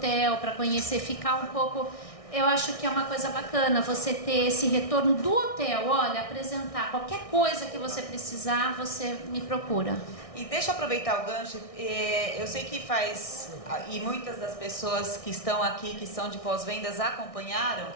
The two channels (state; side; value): late; right; 1.6 ms